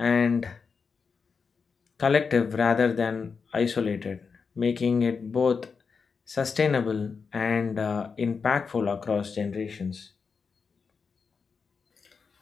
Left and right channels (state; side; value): quieter; right; 5.4 dB